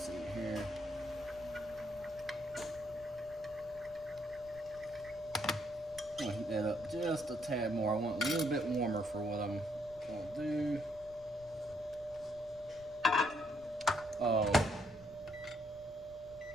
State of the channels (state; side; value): noise; left; rumble, 22 dB below the sound